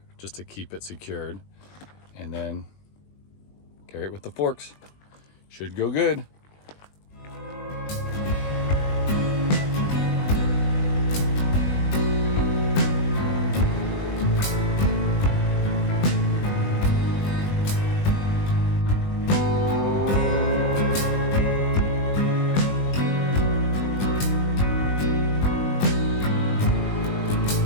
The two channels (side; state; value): right; late; 20 ms